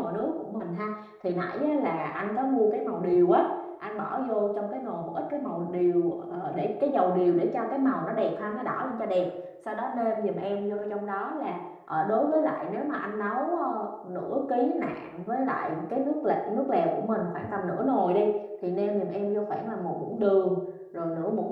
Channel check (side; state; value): both; identical; correlation 1.00